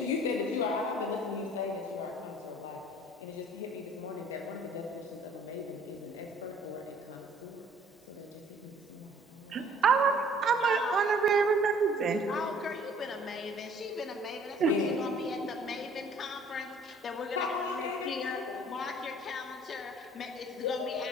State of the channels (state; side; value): normal; both; correlation 0.55